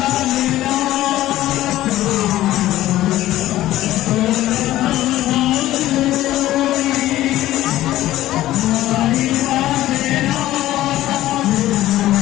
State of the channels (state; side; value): quieter; right; 14.8 dB